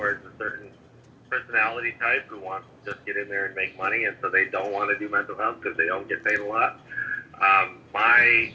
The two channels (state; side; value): identical; both; correlation 1.00